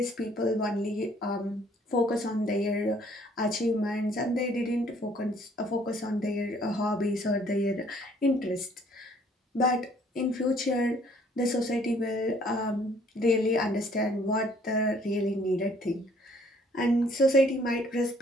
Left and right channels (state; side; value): normal; both; correlation 0.61